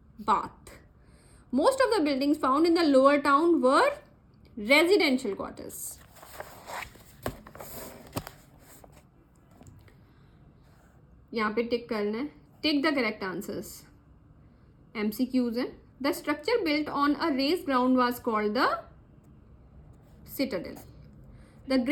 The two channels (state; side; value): identical; both; correlation 1.00